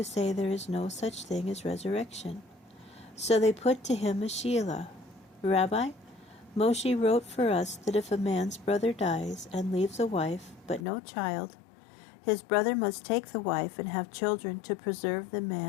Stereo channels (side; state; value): right; drops out; at 10.8 s